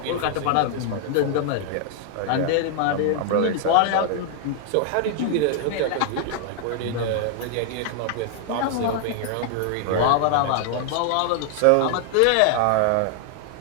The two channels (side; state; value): both; different; correlation 0.00